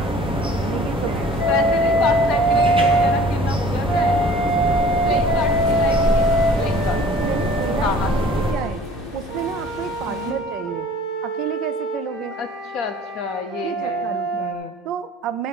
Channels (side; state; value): both; normal; correlation 0.49